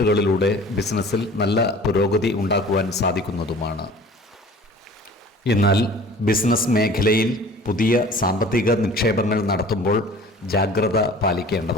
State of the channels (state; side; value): normal; both; correlation 0.45